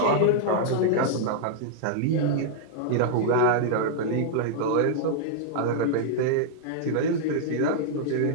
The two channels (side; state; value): both; different; correlation -0.01